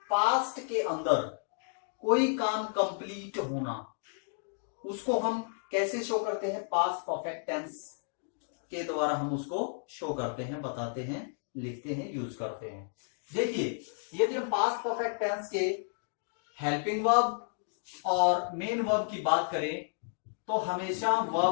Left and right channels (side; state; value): right; silent; digital silence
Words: पास्ट के अंदर कोई काम कंप्लीट होना, उसको हम कैसे शो करते हैं? पास्ट परफेक्ट टेंस के द्वारा हम उसको शो करते हैं, बताते हैं, लिखते हैं, यूज करते हैं। देखिए, यदि हम पास्ट परफेक्ट टेंस के हेल्पिंग वर्ब और मेन वर्ब की बात करें तो हमेशा